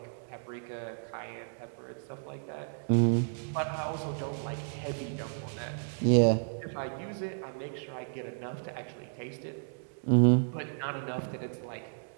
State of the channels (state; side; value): silent; left; digital silence